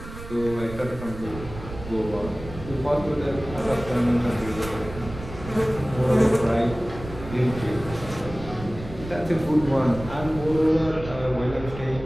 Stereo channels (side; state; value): right; noise; rumble, 12 dB below the sound